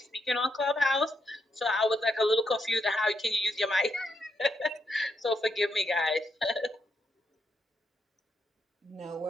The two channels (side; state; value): both; normal; correlation 0.80